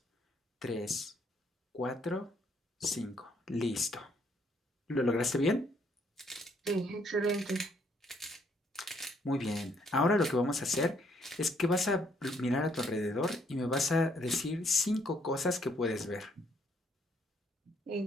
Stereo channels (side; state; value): both; normal; correlation 0.69